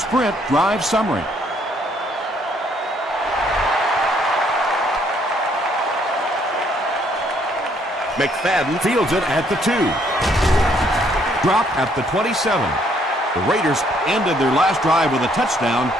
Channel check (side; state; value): both; normal; correlation 0.67